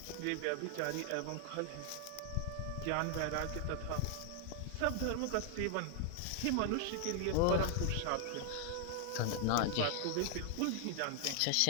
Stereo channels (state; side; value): different; both; correlation 0.00